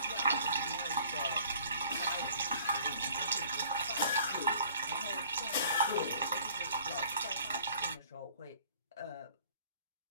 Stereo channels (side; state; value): both; inverted; correlation -0.54